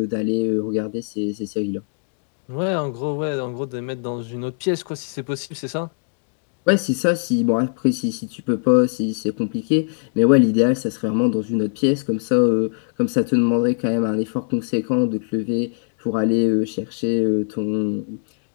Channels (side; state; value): right; silent; digital silence